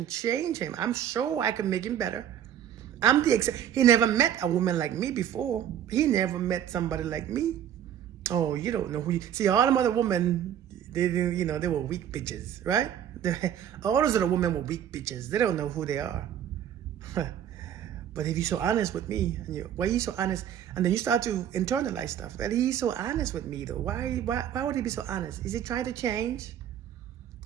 change him. I'm sure I can make him better. He never met a woman like me before. He never met somebody like me. Oh, you don't know who you see. All them other women, they didn't, they were weak bitches, right? All those other women were weak bitches. They don't know who they are. But if you're so honest with me, and why are you so honest? And then you start to internalize stuff. Well, he's so honest with me, though. Why would he be so honest? Is he trying to change?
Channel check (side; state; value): left; quieter; 10.0 dB